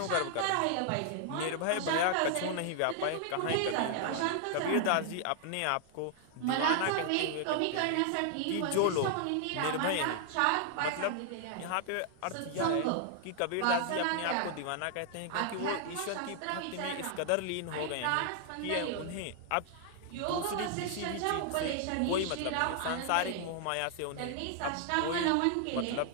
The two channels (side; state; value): both; different; correlation 0.00